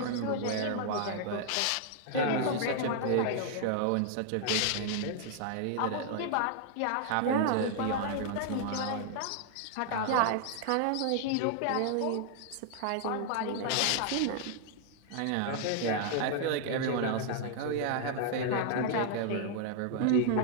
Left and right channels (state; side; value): different; both; correlation 0.00